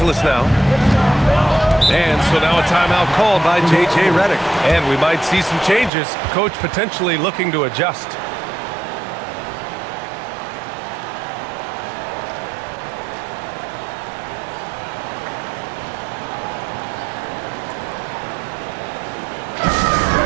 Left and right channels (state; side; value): drops out; left; at 5.9 s